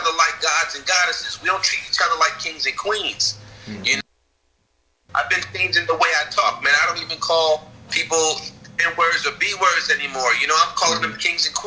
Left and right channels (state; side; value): identical; both; correlation 1.00